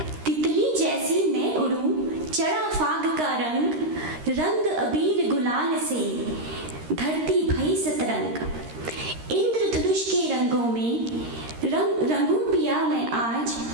तितली जैसी मैं उड़ूं, चढ़ा फाग का रंग, रंग अबीर गुलाल से धरती भई सतरंग। इंद्रधनुष के रंगों में रंगूं पिया मैं आज,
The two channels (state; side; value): late; left; 13 ms